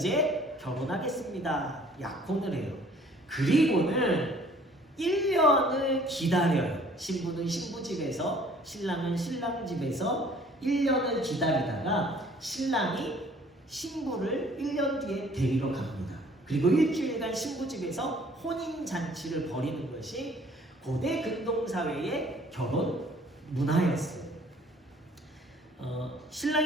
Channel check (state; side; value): normal; both; correlation 0.56